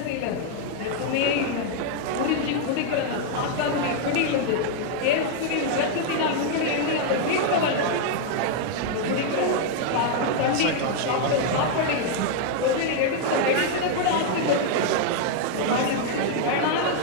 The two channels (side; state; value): both; different; correlation 0.00